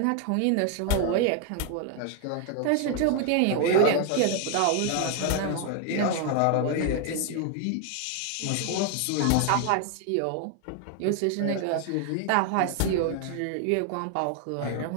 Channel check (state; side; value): different; both; correlation 0.00